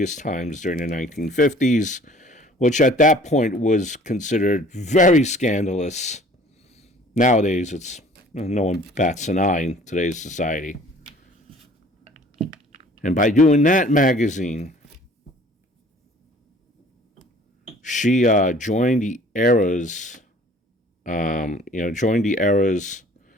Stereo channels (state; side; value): normal; both; correlation 0.51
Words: times during the 1950s, which at that point was considered very scandalous. Nowadays, it's no one bats an eye in today's society. And by doing that magazine, she joined the era's, kind